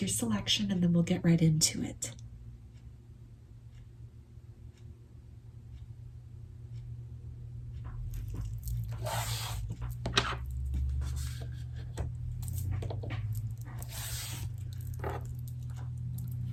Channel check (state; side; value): identical; both; correlation 1.00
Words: selection and then we'll get right into it.